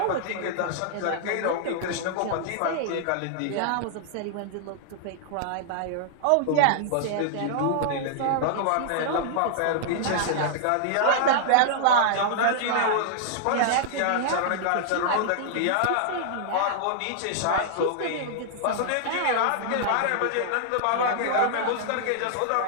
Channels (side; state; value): both; different; correlation -0.01